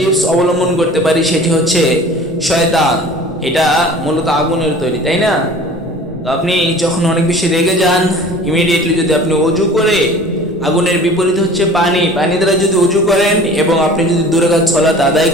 অবলম্বন করতে পারি সেটি হচ্ছে শয়তান। এটা মূলত আগুনের তৈরি, তাই না? তো আপনি যখন অনেক বেশি রেগে যান, ইমিডিয়েটলি যদি আপনি ওযু করে, আগুনের বিপরীত হচ্ছে পানি, পানি দ্বারা যদি ওযু করেন এবং আপনি যদি 2 রাকাত সালাত আদায়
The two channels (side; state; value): both; normal; correlation 0.44